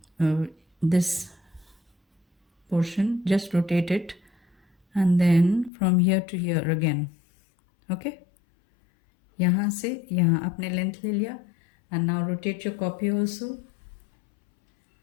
this portion, just rotate it and then from here to here again. Okay, यहाँ से यहाँ आपने लेंथ ले लिया and now rotate your copy also,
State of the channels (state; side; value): drops out; right; at 5.7 s